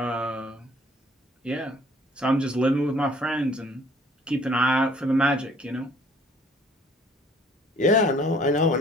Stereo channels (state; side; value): normal; both; correlation 0.57